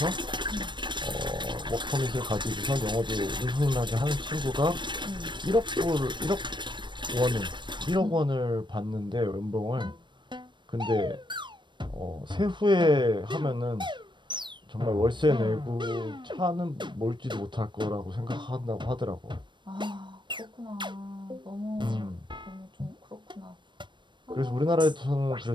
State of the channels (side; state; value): left; late; 0.22 ms